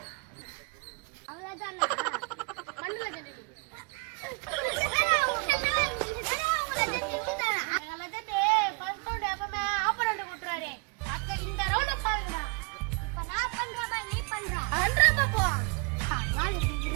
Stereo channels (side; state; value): left; quieter; 33.4 dB